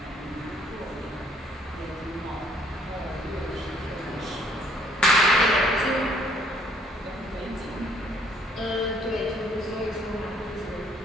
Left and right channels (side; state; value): both; normal; correlation 0.63